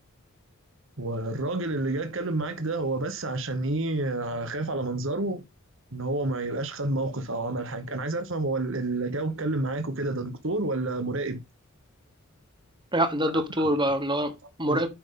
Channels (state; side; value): normal; both; correlation 0.32